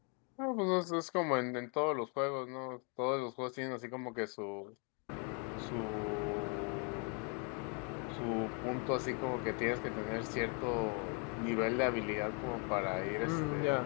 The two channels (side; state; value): right; quieter; 37.1 dB